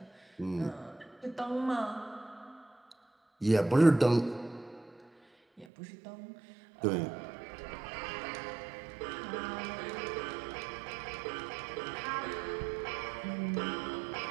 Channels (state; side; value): drops out; left; at 5.7 s